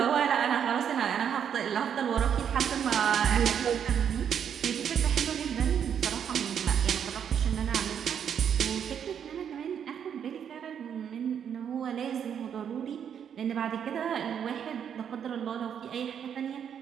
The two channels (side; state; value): left; quieter; 8.3 dB